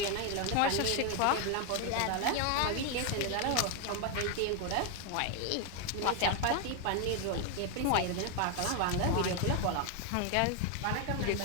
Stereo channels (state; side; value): different; both; correlation 0.01